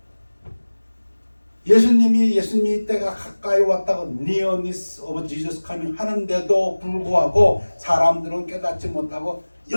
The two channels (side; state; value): both; inverted; correlation -1.00